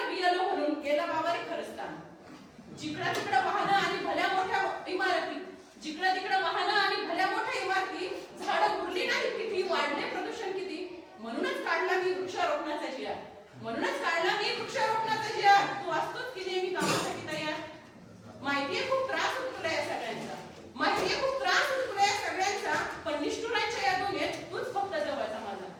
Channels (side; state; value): both; identical; correlation 1.00